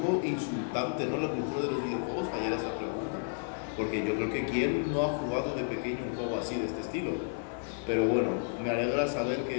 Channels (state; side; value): silent; right; digital silence